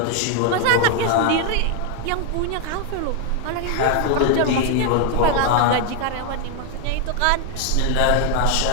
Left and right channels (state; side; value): different; both; correlation 0.00